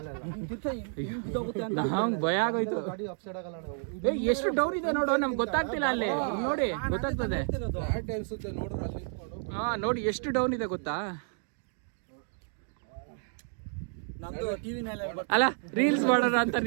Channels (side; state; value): left; silent; 56 dB below the other